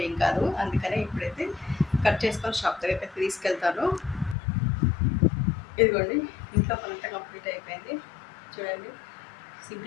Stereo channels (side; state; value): right; drops out; at 4.4 s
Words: ఏం కాదు. అందుకనే ఇప్పుడైతే కట్ చేసుకొని షాప్ దగ్గరికి అయితే తీసుకెళ్తాను. ఇదిగోండి ఇంట్లో పనంతా కంప్లీట్ అయిపోయింది. చూడండి